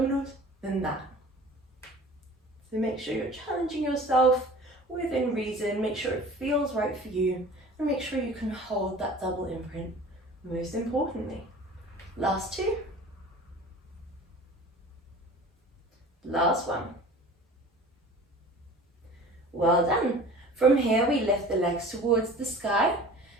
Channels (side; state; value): both; normal; correlation 0.42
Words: than that. So make sure you're challenging yourself within reason, make sure it feels right for you, and make sure you can hold that double imprint, most importantly. Last 2. Last one. Well done. From here, we lift the legs towards the sky,